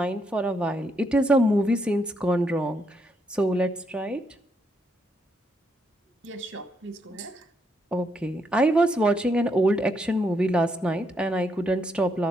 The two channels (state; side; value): normal; both; correlation 0.77